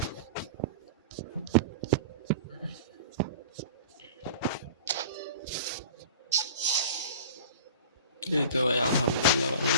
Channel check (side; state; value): both; inverted; correlation -0.38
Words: এই তো ভাই আলহামদুলিল্লাহ